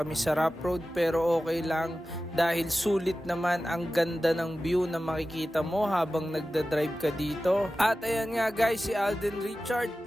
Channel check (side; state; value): both; normal; correlation 0.95